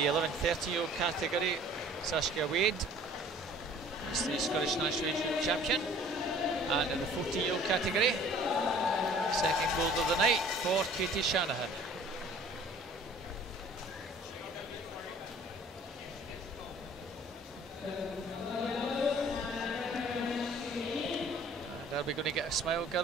11, 13-year-old category, Saskia Wade is the Scottish National Age champion. And in the 14-year-old category, second gold of the night for Katie Shanahan. And are we going to get a smile,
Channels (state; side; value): normal; both; correlation 0.51